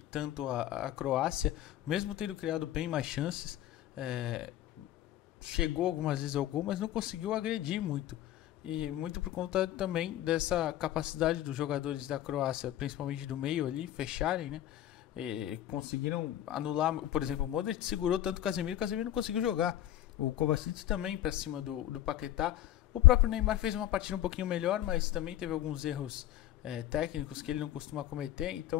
tanto a Croácia, mesmo tendo criado bem mais chances. Chegou algumas vezes ao gol, mas não conseguiu agredir muito. E muito por conta também dessa capacidade dos jogadores da Croácia, principalmente do meio ali, fecharem, né? E conseguiram anular, por exemplo, o Modric segurou tanto o Casemiro não conseguiu jogar. O Kovacic também para cima do Paquetá. O próprio Neymar fez uma partida um pouquinho melhor, mas também teve alguns erros técnicos que ele não costuma cometer.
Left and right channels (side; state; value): right; quieter; 12.9 dB